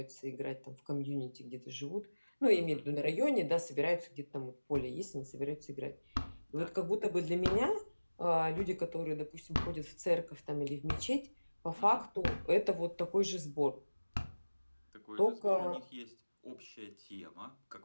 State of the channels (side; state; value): both; inverted; correlation -1.00